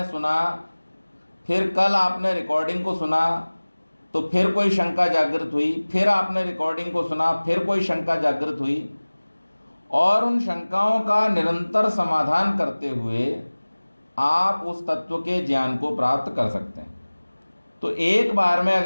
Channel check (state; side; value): inverted; both; correlation -1.00